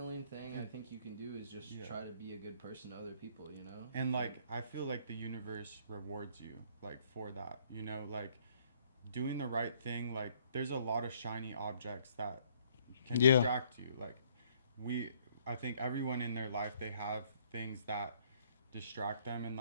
thing I think you can do is just Yeah. try to be a good person to other people, you know? And like I feel like the universe rewards you like for that, you know, like doing the right thing. Like there's a lot of shiny objects that can Yeah. distract you. Like we I think everyone in their life, they have things that distract them, and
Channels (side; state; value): both; inverted; correlation -0.63